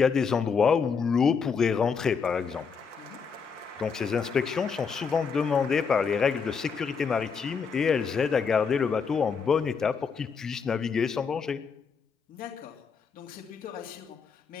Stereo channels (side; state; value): right; quieter; 5.9 dB